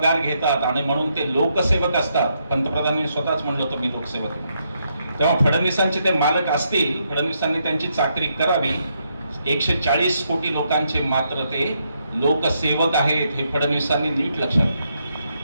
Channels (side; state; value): both; inverted; correlation -0.78